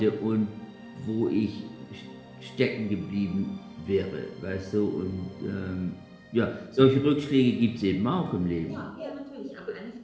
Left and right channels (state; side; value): identical; both; correlation 1.00